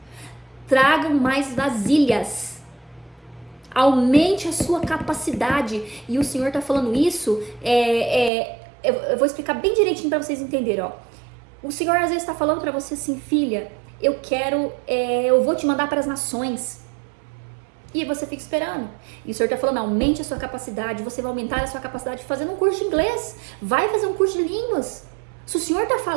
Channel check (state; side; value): drops out; left; at 8.3 s